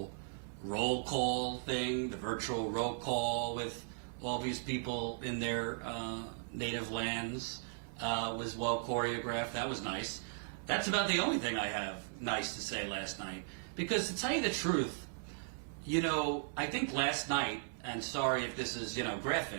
roll call thing, the virtual roll call with all these people in their native lands was well choreographed. That was nice. That's about the only thing I have nice to say last night. Because to tell you the truth, I think last night, and sorry if this is,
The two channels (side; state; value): left; silent; 53 dB below the other